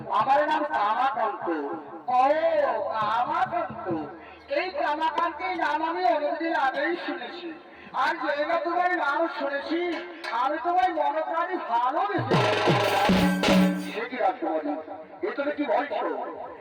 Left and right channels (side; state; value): both; identical; correlation 1.00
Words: আমার নাম কামাকান্ত। ও কামাকান্ত, এই কামাকান্তের নাম আমি অনেকদিন আগেই শুনেছি। আর যেটা তোমার নাম শুনেছি, আমি তোমার মনোপ্রাণী ভালোবেসে। সে কি রাজকুমারী, এ তুমি কি বলছো?